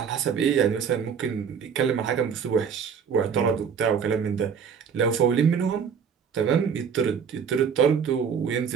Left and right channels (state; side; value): quieter; left; 6.9 dB